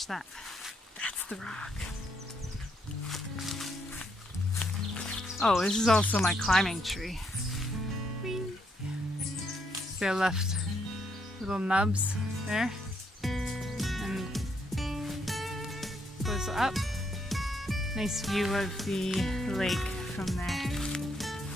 that, that's the rock. Oh, this is also my climbing tree. Whee! See, I left little nubs there. And goes up. Nice view of the lake from there.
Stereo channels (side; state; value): both; normal; correlation 0.75